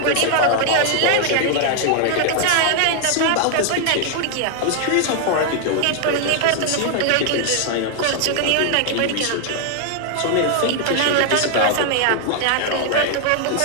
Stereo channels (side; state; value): both; different; correlation 0.00